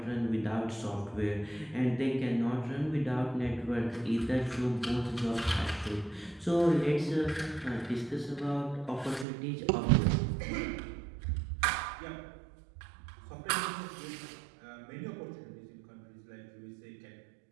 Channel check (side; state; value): left; drops out; at 9.2 s